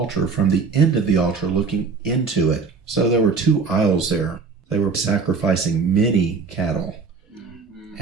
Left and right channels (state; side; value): quieter; left; 4.9 dB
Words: from the end of the altar looking into it. So there were two aisles there. They were sacrificing many cattle.